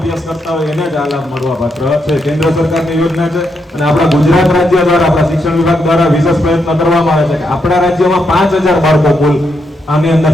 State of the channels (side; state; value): both; normal; correlation 0.80